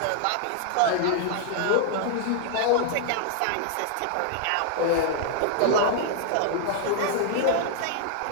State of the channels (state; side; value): different; both; correlation -0.01